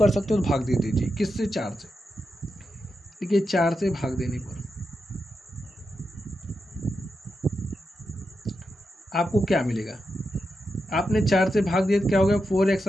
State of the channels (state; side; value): normal; both; correlation 0.87